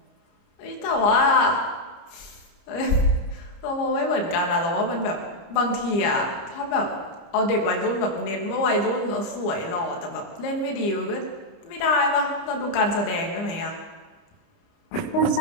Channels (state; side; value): late; right; 30 ms